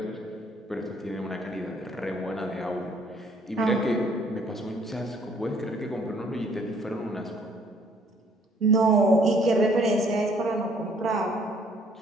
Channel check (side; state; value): both; normal; correlation 0.62